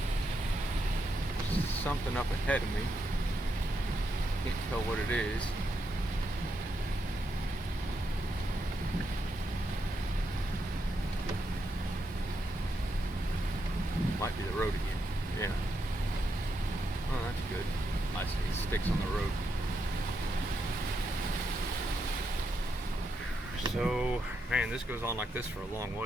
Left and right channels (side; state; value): both; normal; correlation 0.82